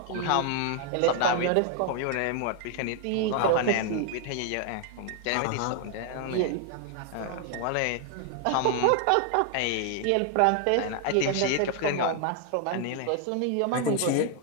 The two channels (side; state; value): both; different; correlation 0.00